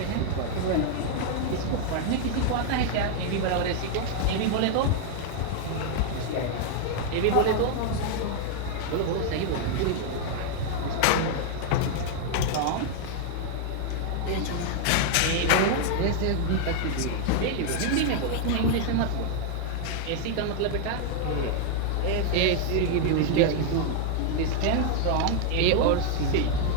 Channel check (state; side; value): different; both; correlation 0.00